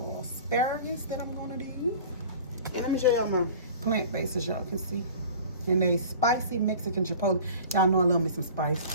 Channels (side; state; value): both; inverted; correlation -0.41